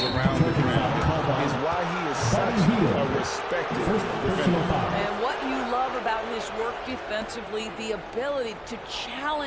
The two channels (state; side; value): identical; both; correlation 1.00